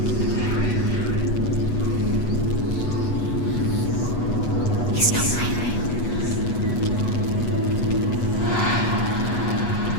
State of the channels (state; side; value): late; right; 8.2 ms